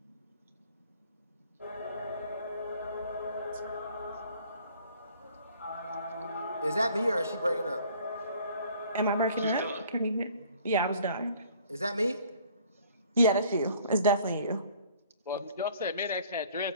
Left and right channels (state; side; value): inverted; both; correlation -0.55